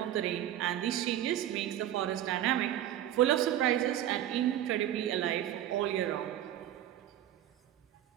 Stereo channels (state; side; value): quieter; left; 12.0 dB